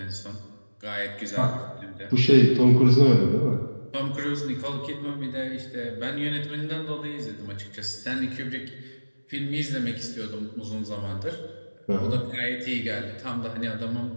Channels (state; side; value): inverted; both; correlation -1.00